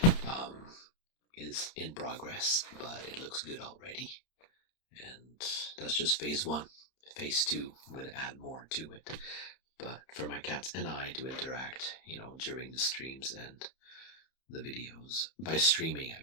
is in progress, but it looks good already. And that's just phase 1. Phase 2, I'm gonna add more to it. But for my cats and I to interact, during the streams and the videos. By streaming, I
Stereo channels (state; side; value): late; right; 31 ms